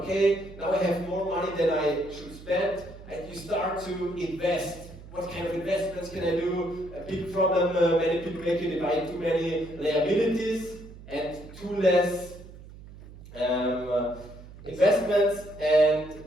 okay, now I have more money than I should spend, and you start to invest. What kind of investments can I do? A big problem many people make you divide too many liabilities and too less investments, and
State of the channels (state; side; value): noise; right; hum, 17 dB below the sound